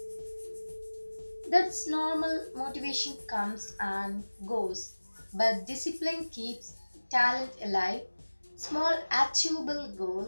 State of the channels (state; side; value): inverted; both; correlation -1.00